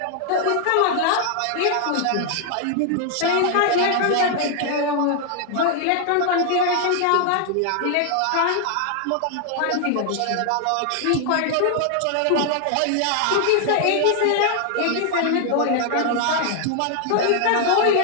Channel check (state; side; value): different; both; correlation 0.00